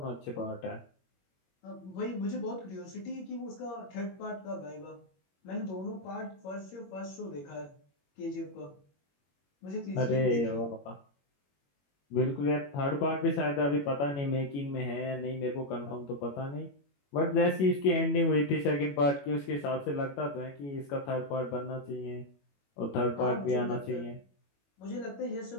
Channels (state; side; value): late; right; 21 ms